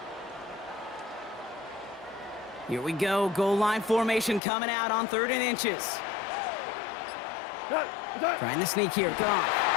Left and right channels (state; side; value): drops out; right; at 4.4 s